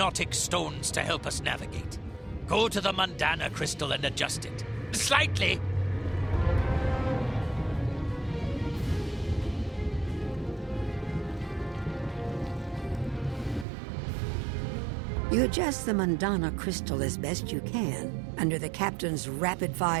stones to help us navigate. Go to the Mundana crystal and adjust it. Slightly! You adjust the Mundana crystal as best you can under the captain's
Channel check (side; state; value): left; drops out; at 13.7 s